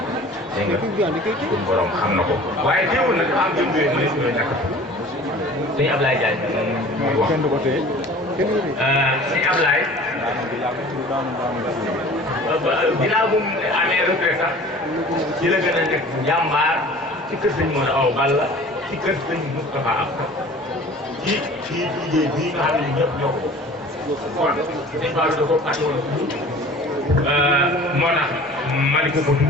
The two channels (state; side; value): normal; both; correlation 0.44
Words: dégg nga suñu borom xam na ko waaye teewul nag am jëm yooyu mu ne suñu ñàkk sëñ Ablaye Diagne muy wax sëñ Ablaye ginnaaw bu mu amee retraite sax ci la gën a nekk jàmbaar ci kër sëñ Modou Awa Balla ci kër sëñ Moustapha Absa ci liggéey bii nga xam ne ñëpp ñoo ko kon dañ faa da ko fàtte woon moo tax ma di ko